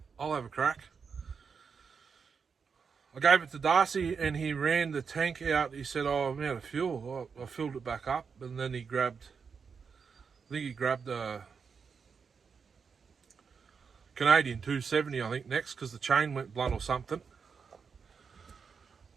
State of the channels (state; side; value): quieter; left; 5.8 dB